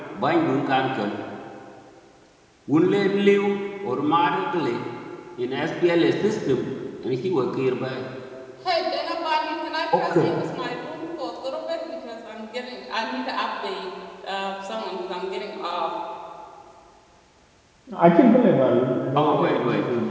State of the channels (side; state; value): both; identical; correlation 1.00